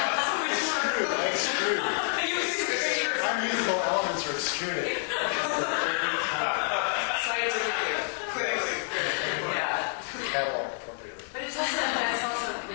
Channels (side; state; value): right; silent; 59 dB below the other